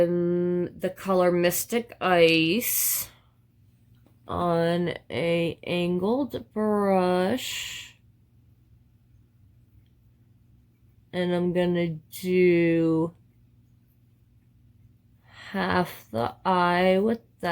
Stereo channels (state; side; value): identical; both; correlation 1.00